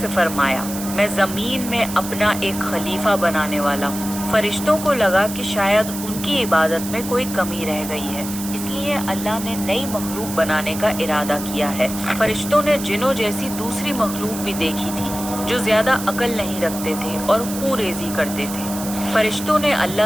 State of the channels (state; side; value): noise; right; hiss, 9 dB below the sound